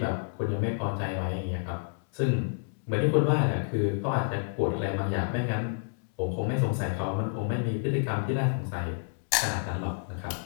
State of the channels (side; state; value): right; silent; digital silence